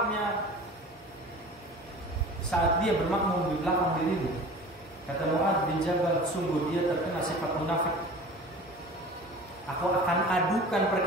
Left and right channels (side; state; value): both; normal; correlation 0.40